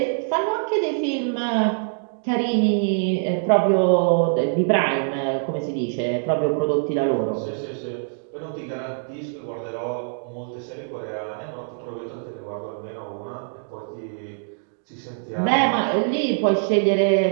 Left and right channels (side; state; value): left; silent; digital silence